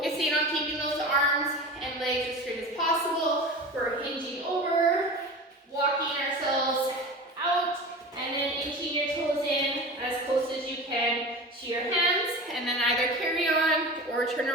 on keeping those arms and legs as straight as possible. We're hinging over, walking ourselves out, and then inching your toes in as close as you can to your hands, and then either carry on or turn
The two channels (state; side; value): normal; both; correlation 0.32